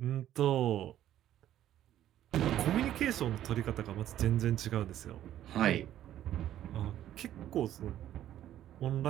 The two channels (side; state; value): left; quieter; 12.0 dB